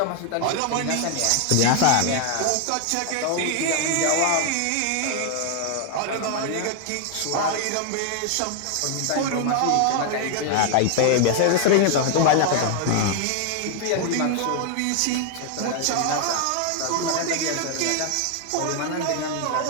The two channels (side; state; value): both; different; correlation 0.00